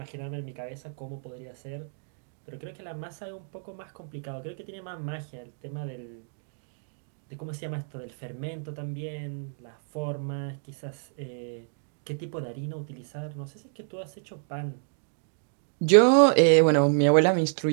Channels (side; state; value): left; silent; digital silence